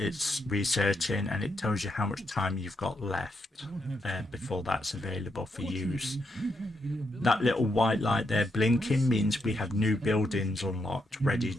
researching and it tells you how much time you've got left before that's available for use. That little white light there blinking means we have new buildings unlocked ready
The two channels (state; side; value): normal; both; correlation 0.81